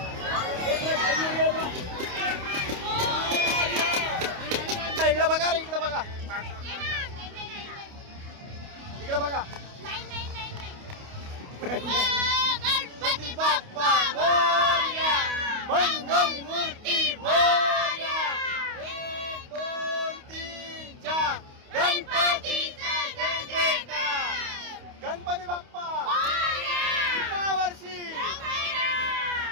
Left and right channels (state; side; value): late; left; 28 ms